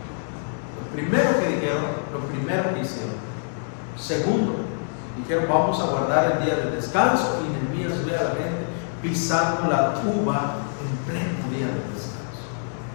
Lo primero que dijeron, lo primero que hicieron. Segundo, dijeron, vamos a guardar el día de descanso. Y Nehemías ve a la gente pisando la uva en pleno día de descanso.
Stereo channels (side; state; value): right; silent; digital silence